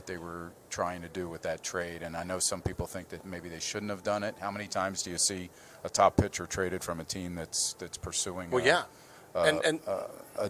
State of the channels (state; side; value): identical; both; correlation 1.00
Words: they were trying to do with that trade. And I know some people think that maybe they shouldn't have done it. How many times do you see a top pitcher traded from a team that's pursuing? Well, yeah. A